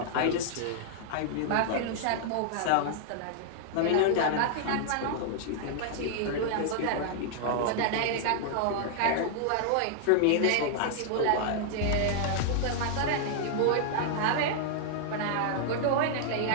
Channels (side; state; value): both; different; correlation -0.01